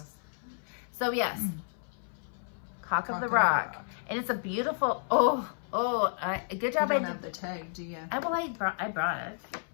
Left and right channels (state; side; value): silent; right; 57 dB below the other